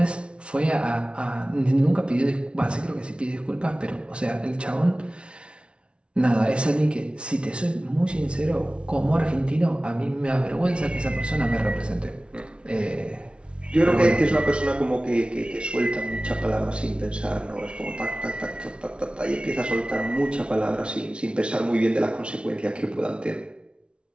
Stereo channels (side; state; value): left; late; 0.058 ms